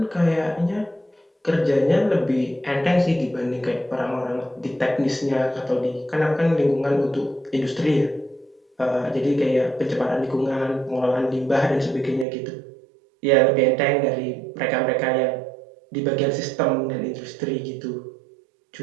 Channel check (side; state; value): left; drops out; at 12.2 s